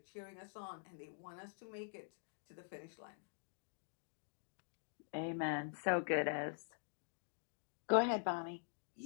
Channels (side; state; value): right; silent; digital silence